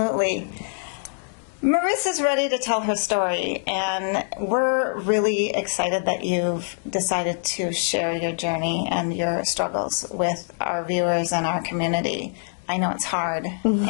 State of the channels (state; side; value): silent; right; digital silence